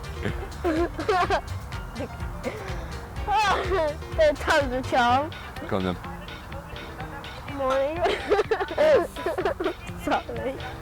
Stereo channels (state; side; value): identical; both; correlation 1.00